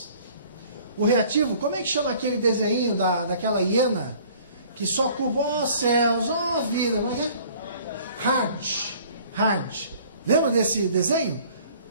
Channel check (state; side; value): inverted; both; correlation -0.53